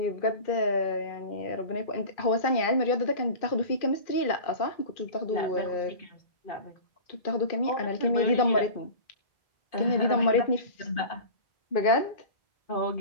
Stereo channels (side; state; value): right; late; 2.4 ms